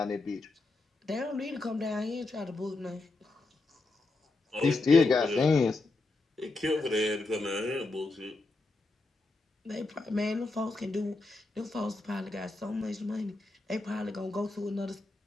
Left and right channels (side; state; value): right; quieter; 3.3 dB